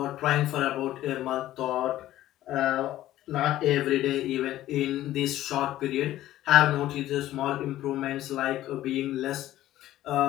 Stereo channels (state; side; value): quieter; right; 14.2 dB